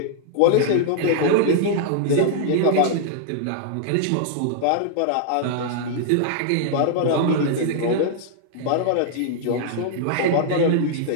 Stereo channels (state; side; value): different; both; correlation -0.01